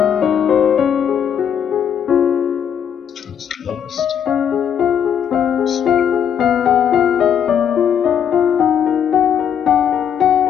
It's the lowest.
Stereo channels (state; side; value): quieter; right; 8.5 dB